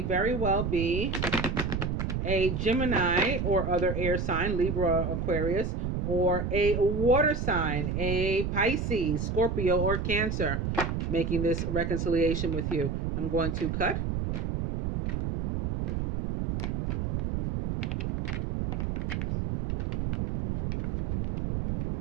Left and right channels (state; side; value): noise; right; rumble, 1 dB below the sound